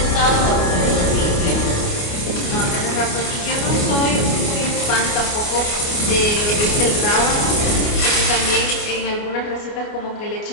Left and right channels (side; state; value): right; late; 29 ms